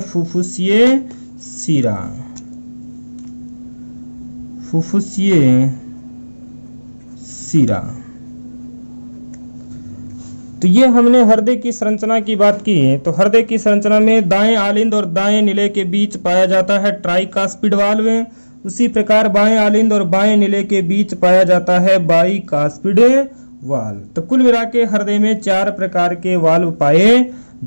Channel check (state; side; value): inverted; both; correlation -1.00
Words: फुफ्फुसीय शिरा। फुफ्फुसीय शिरा। तो ये हमने हृदय की संरचना की बात की। तो हृदय की संरचना में दाएं आलिंद और दाएं निले के बीच पाया जाता है ट्राइकास्पिड वाल्व। उसी प्रकार बाएं आलिंद और बाएं निले के बीच पाया जाता है बाइकास्पिड वाल्व। तो कुल मिला के हृदय में 4 प्रकार के वाल्व पाए